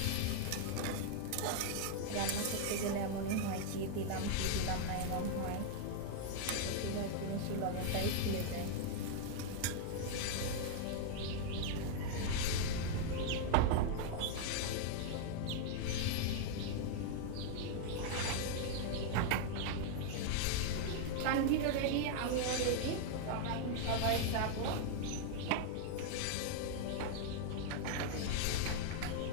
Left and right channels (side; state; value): both; different; correlation 0.00